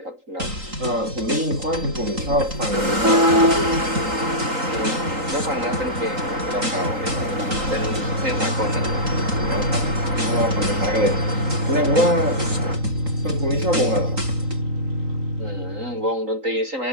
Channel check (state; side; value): late; left; 3.8 ms